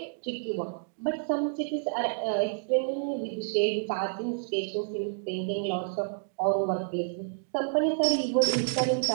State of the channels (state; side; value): silent; left; digital silence